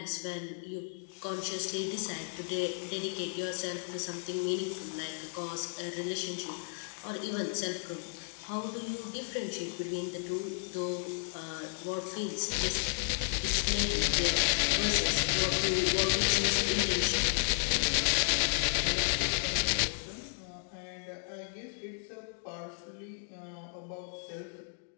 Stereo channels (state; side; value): silent; right; digital silence